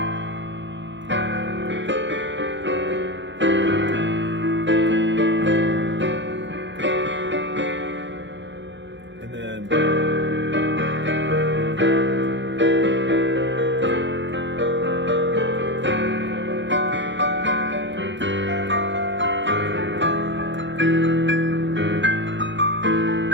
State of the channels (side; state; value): left; late; 0.53 ms